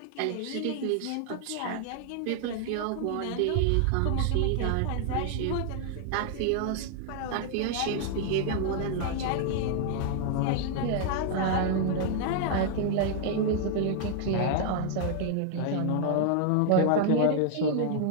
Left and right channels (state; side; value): different; both; correlation -0.01